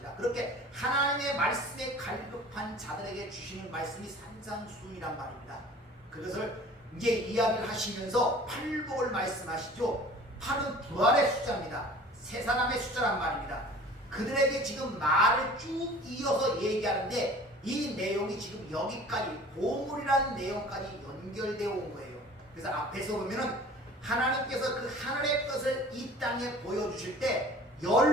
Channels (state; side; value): normal; both; correlation 0.45